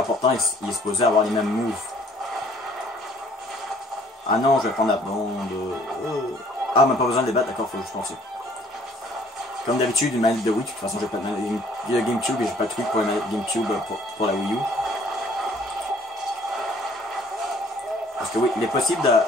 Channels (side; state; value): both; normal; correlation 0.58